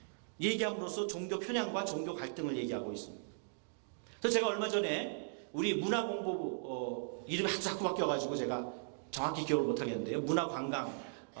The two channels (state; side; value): silent; left; digital silence